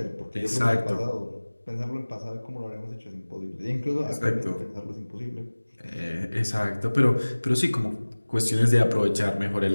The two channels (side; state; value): both; inverted; correlation -1.00